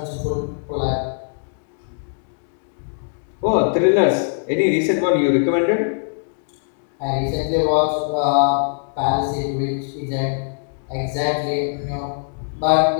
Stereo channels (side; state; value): right; silent; digital silence